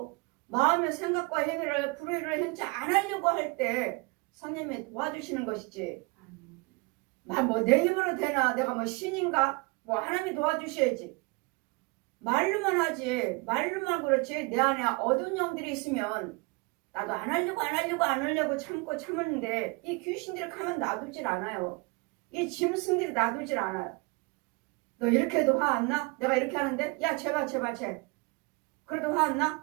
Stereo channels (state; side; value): quieter; left; 27.8 dB